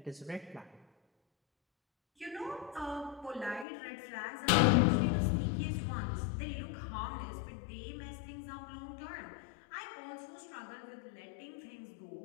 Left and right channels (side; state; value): right; drops out; at 3.7 s